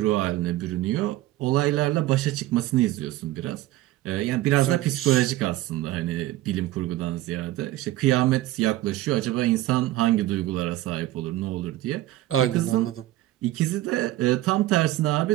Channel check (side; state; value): left; quieter; 15.6 dB